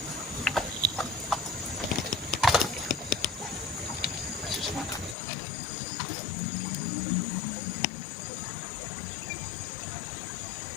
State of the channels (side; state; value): right; drops out; at 5.2 s